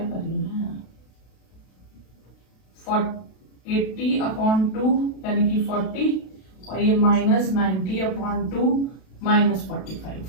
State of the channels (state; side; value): late; right; 32 ms